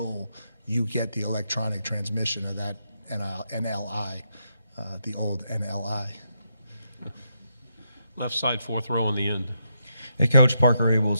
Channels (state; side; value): inverted; both; correlation -0.81